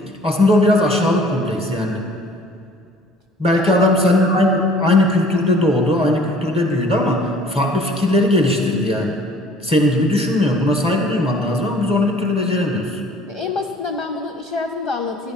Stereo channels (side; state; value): both; normal; correlation 0.53